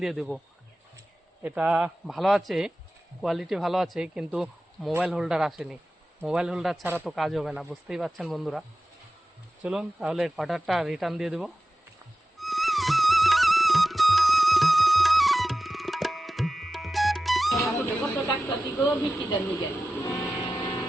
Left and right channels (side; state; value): both; normal; correlation 0.94